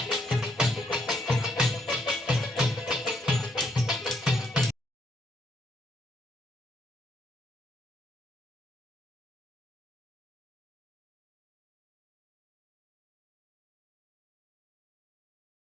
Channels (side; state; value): both; normal; correlation 0.73